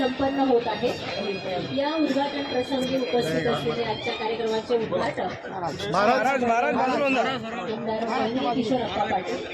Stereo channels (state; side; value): identical; both; correlation 1.00